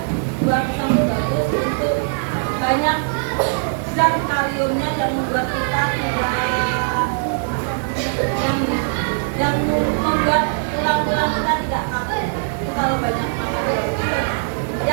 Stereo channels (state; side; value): silent; left; digital silence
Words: buah pisang itu bagus untuk banyak zat kaliumnya yang membuat kita tidak yang membuat tulang-tulang kita tidak kaku. Itu kalau banyak makan.